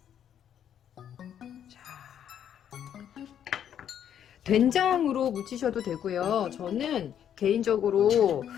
자, 된장으로 무치셔도 되고요. 저는 개인적으로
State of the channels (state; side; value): quieter; right; 9.5 dB